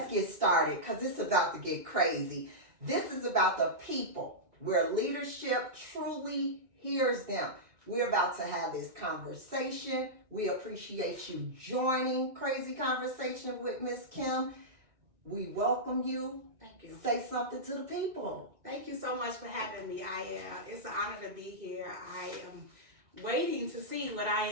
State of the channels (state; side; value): late; left; 1.8 ms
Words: get started, because it's about to get crazy. This is about the people, where leadership truly hears them. We're about to have this conversation. We appreciate you joining Crazy Conversation with Miss Kim. We welcome you. Thank you. Say something to the people. Thank you so much for having me. It's an honor to be here. I am waiting to see what I